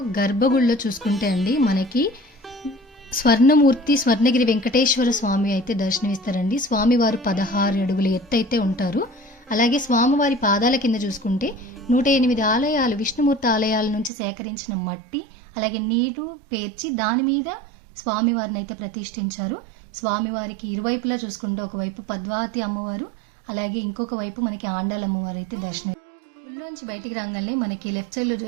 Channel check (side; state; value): left; drops out; at 14.1 s